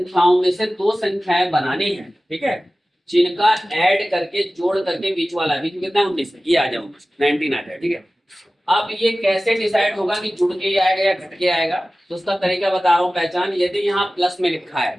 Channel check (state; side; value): normal; both; correlation 0.96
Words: में से 2 संख्याएं बनानी है। ठीक है, जिनका ऐड करके जोड़ करके बीच वाला, बीच में कितना 19 है, ये आ जाओ 19 आ जाए। ठीक है, अब ये कैसे डिसाइड होगा कि जुड़ के आएगा या घट के आएगा, तो उसका तरीका बता रहा हूँ। पहचान, यदि यहाँ प्लस में लिखा है,